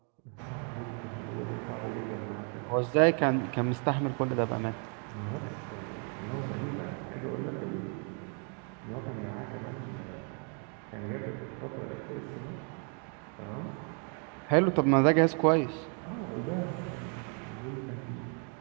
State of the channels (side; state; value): left; quieter; 39.5 dB